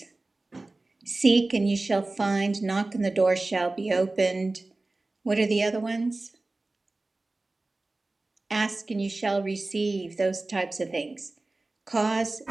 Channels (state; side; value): quieter; left; 3.1 dB